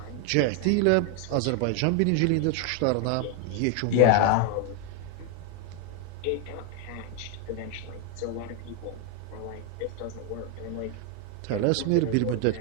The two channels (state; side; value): different; both; correlation 0.00